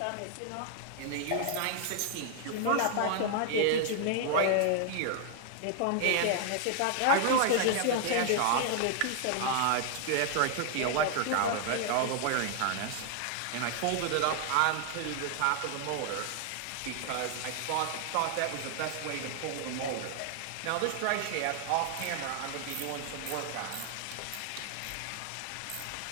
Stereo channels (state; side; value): different; both; correlation 0.00